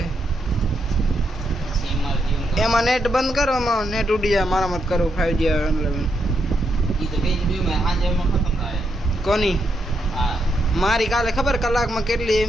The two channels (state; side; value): normal; both; correlation 0.80